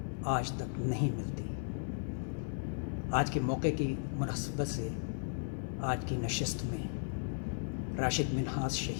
آج تک نہیں ملتی۔ آج کے موقع کی مناسبت سے آج کی نشست میں راشد منہاس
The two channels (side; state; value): right; silent; 54 dB below the other